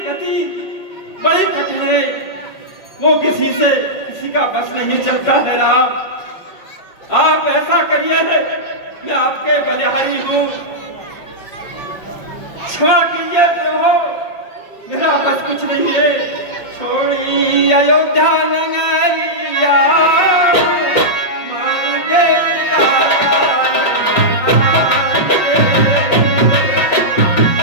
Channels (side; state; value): right; late; 5.4 ms